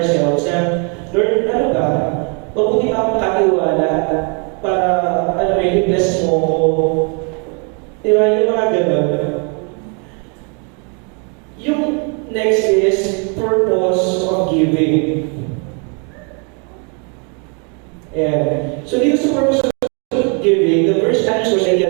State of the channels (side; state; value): left; quieter; 36.6 dB